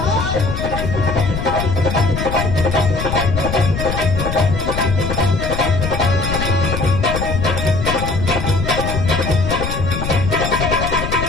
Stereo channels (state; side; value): noise; left; rumble, 4 dB below the sound